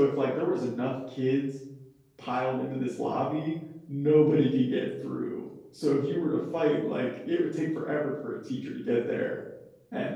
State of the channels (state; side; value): identical; both; correlation 1.00